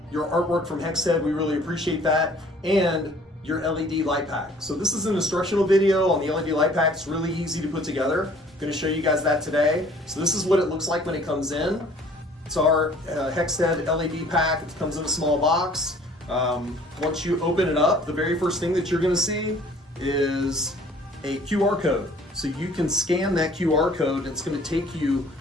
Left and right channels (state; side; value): normal; both; correlation 0.54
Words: your artwork from Hexhead. We really appreciate that. And your LED light pack. So this is an instructional video on the LED light pack. It's really easy to put together. I'm going to show you guys that today. So this is what it looks like when it comes in. It's our Hexhead LED pack. It comes in a small box. Once you open it up, the very first thing that you're going to see is a QR code. So you can scan that QR code and it's going to take you